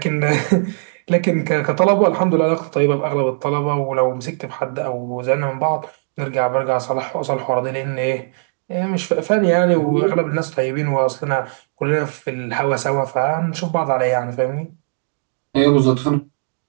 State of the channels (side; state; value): left; silent; 62 dB below the other